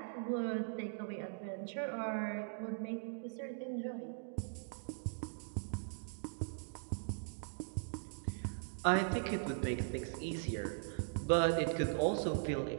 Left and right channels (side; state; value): left; silent; digital silence